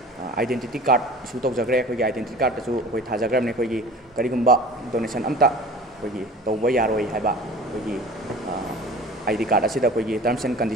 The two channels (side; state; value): both; normal; correlation 0.42